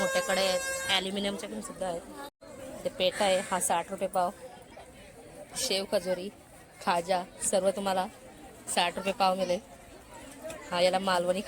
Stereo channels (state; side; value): identical; both; correlation 1.00